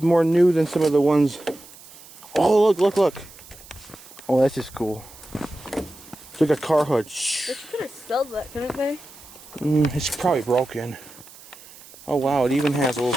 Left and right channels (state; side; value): noise; right; hiss, 20 dB below the sound